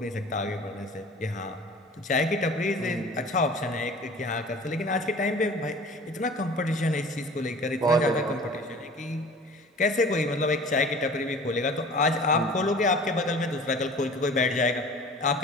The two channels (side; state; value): both; normal; correlation 0.44